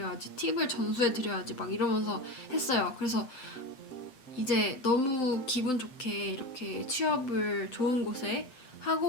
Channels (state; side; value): late; right; 7.8 ms